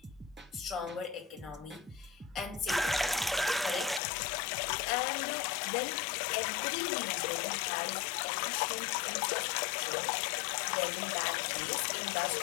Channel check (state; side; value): drops out; right; at 4.0 s